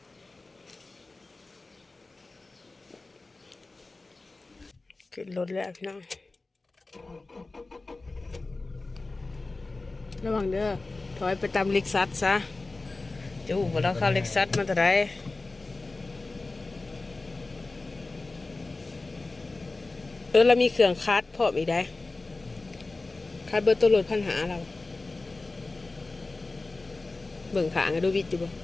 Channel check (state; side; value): quieter; right; 3.4 dB